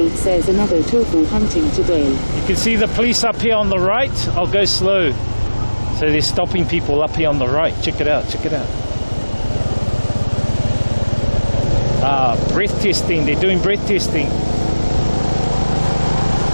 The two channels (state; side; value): inverted; both; correlation -1.00